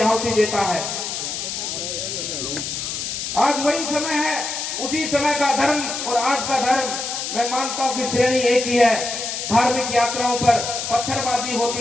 आहुति देता है। आज वही समय है, उसी समय का धर्म और आज का धर्म मैं मानता हूं कि श्रेणी एक ही है। धार्मिक यात्राओं पर पत्थरबाजी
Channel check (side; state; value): left; noise; hiss, 4 dB below the sound